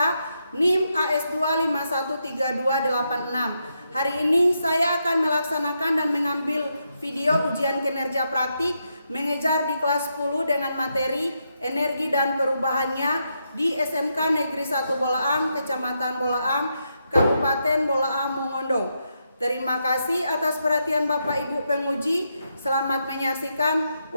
NIM AS2 513286. Hari ini saya akan melaksanakan dan mengambil video ujian kinerja praktik mengejar di kelas 10 dengan materi energi dan perubahannya di SMK Negeri 1 Bolaang, Kecamatan Bolaang, Kabupaten Bolaang, Mongondo. Terima kasih atas perhatian Bapak Ibu penguji. Selamat menyaksikan.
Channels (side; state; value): both; inverted; correlation -0.82